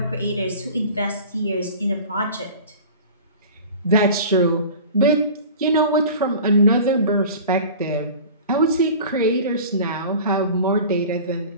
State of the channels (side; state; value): both; inverted; correlation -0.39